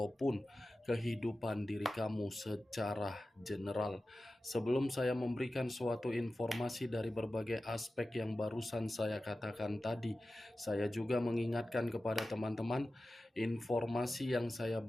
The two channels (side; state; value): both; normal; correlation 0.95